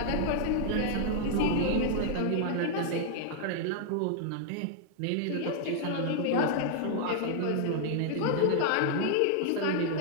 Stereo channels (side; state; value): both; different; correlation -0.01